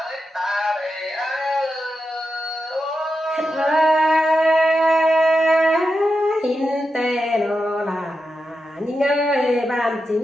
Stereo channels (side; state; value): both; normal; correlation 0.88